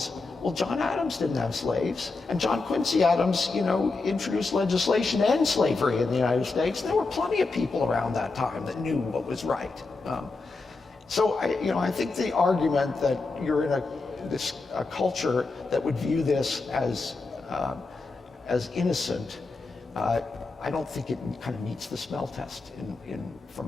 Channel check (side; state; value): right; quieter; 3.8 dB